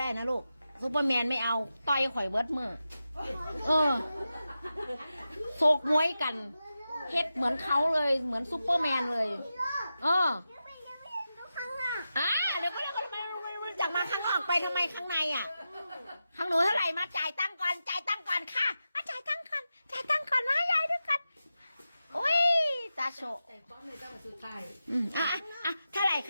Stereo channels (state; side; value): inverted; both; correlation -0.91